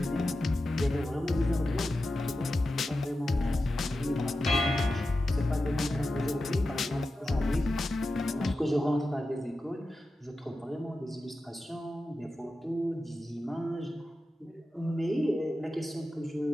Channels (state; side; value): normal; both; correlation 0.92